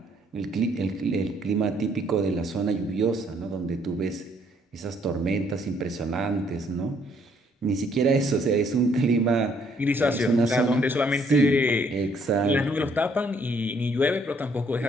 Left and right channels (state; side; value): normal; both; correlation 0.66